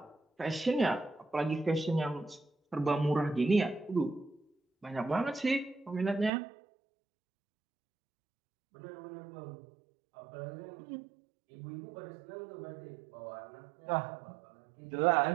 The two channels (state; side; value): drops out; left; at 6.3 s